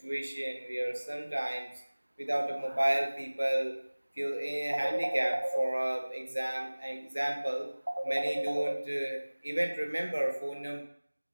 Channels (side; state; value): both; inverted; correlation -1.00